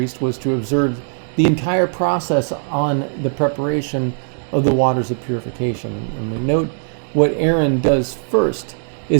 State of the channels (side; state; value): left; silent; digital silence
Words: was to observe the entire process on the preparation of the waters of purification. And we note what Aaron does first